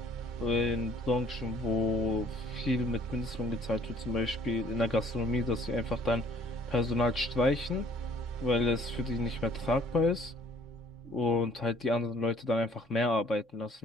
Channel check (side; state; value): both; normal; correlation 0.58